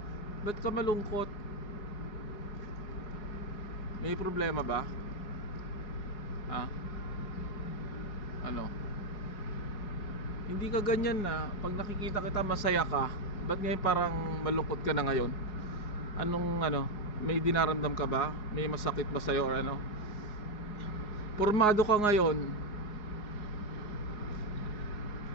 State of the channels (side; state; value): right; late; 4.8 ms